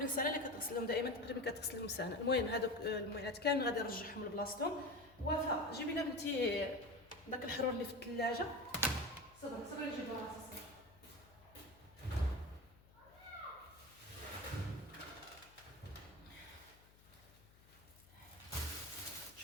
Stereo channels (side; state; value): left; noise; hum, 25 dB below the sound